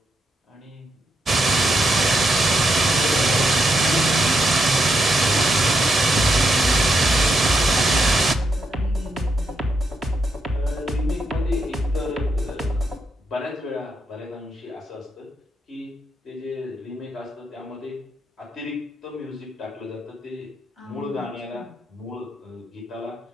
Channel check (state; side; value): normal; both; correlation 0.80